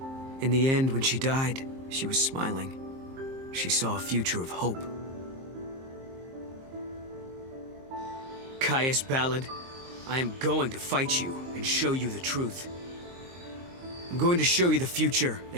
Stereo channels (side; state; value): left; late; 23 ms